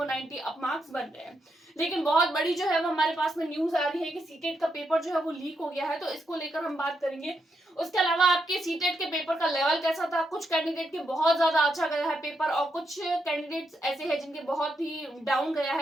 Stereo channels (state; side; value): normal; both; correlation 0.81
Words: 90 अप मार्क्स बन रहे हैं। लेकिन बहुत बड़ी जो है वो हमारे पास में न्यूज आ रही है कि सीटेट का पेपर जो है वो लीक हो गया है, तो इसको लेकर हम बात करेंगे। उसके अलावा आपके सीटेट के पेपर का लेवल कैसा था। कुछ कैंडिडेट के बहुत ज्यादा अच्छा गया है पेपर और कुछ कैंडिडेट्स ऐसे हैं जिनके बहुत ही डाउन गया